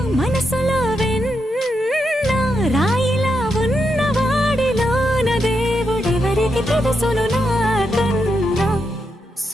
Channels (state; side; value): normal; both; correlation 0.83